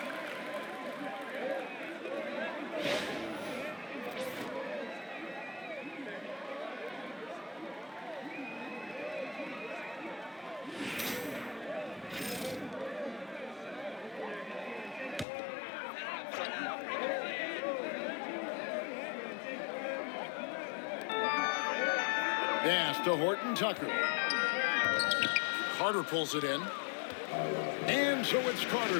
Pass to Horton Tucker. Carter pulls it in. And so it's Carter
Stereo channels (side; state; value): right; drops out; at 15.2 s